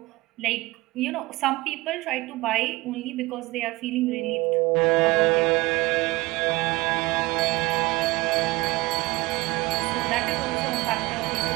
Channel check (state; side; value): quieter; left; 21.4 dB